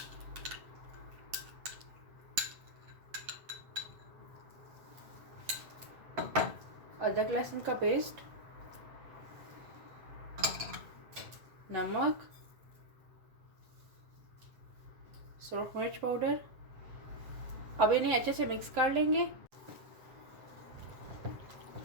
अदरक लहसुन का पेस्ट, नमक, सुरख मिर्च पाउडर। अब इन्हें अच्छे से मिक्स कर लेंगे।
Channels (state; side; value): late; left; 7.5 ms